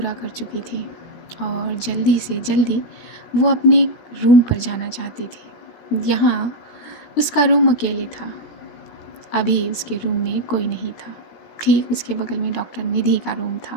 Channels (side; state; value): right; late; 16 ms